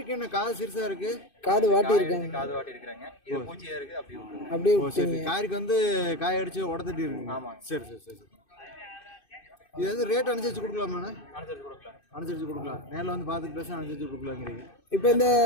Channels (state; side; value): late; right; 2.6 ms